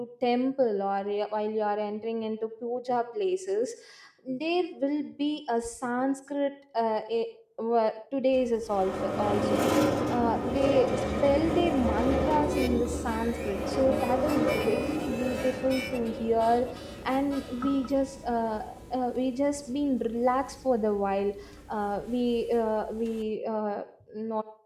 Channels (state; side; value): identical; both; correlation 1.00